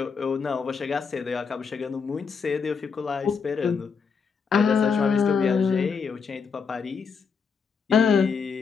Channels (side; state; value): right; quieter; 5.7 dB